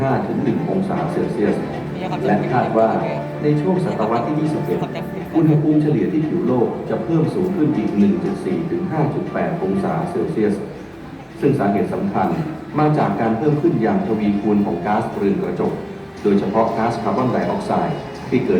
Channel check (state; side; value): identical; both; correlation 1.00